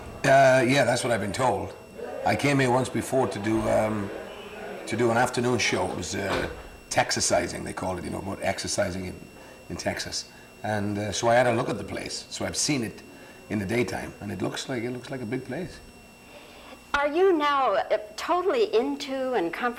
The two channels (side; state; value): both; identical; correlation 1.00